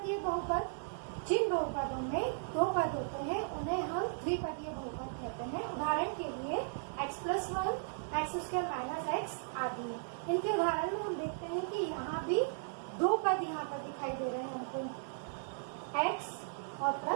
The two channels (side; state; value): left; silent; 54 dB below the other